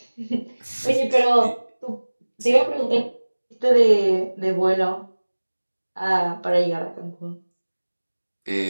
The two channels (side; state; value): both; inverted; correlation -1.00